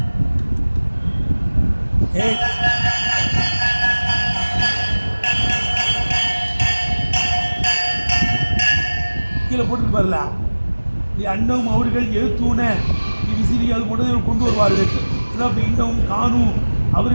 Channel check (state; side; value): inverted; both; correlation -1.00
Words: கீழே போட்டுட்டு பாருல, நீ அண்ணவும் அவர்கள் எழுத்தூன நீ விசிறி அது கொண்டு வருவார்கள். இதான் இன்னமும் காணும்,